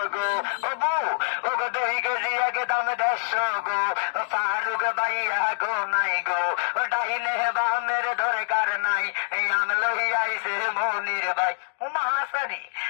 গো ও বউ ও গো 2 কেজি একদম 150 গো ফারুক ভাইয়া গো নাই গো ডাইনে বামের দরকার নাই আমি লই আইছে মনির ভাই ও মাসানি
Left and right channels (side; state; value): right; silent; digital silence